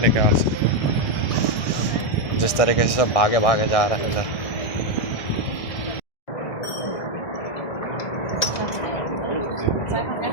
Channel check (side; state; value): right; late; 1.6 ms